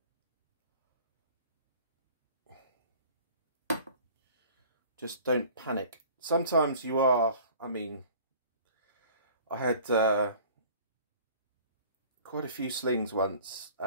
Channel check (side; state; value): both; inverted; correlation -0.47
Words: Just don't panic. Sometimes you are, I mean, I had quite a few slings once,